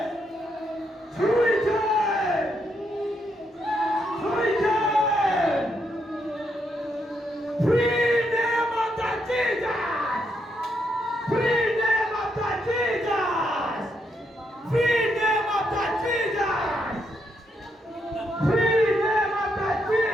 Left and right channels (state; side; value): normal; both; correlation 0.78